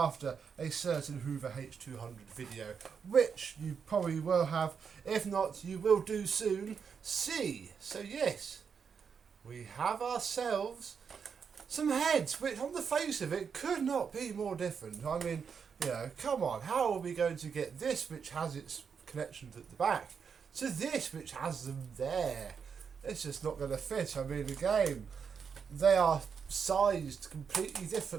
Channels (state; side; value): quieter; left; 6.5 dB